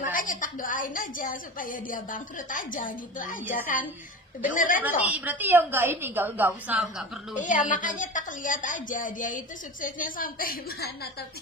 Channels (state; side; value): normal; both; correlation 0.31